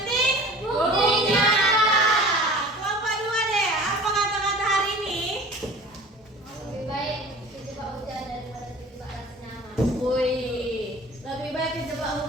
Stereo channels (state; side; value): normal; both; correlation 0.42